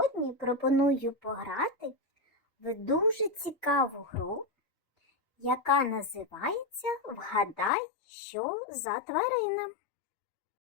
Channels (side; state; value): right; drops out; at 7.7 s